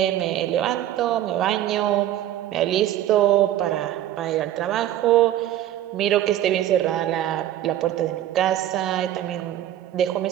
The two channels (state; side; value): quieter; left; 12.5 dB